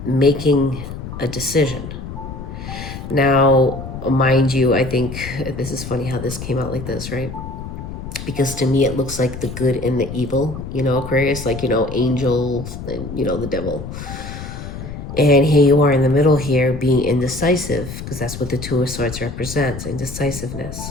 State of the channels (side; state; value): left; noise; rumble, 9 dB below the sound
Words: making a decision. Now, mind you, I think this is funny how this came out like this, right? Because to me, it looks like the good and the evil, Aquarius, like, angels and, the devil. And here you are in the middle here being indecisive, because that's what the Two of Swords represents, indecisiveness.